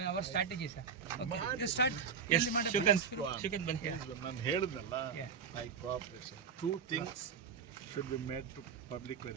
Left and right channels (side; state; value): left; quieter; 6.4 dB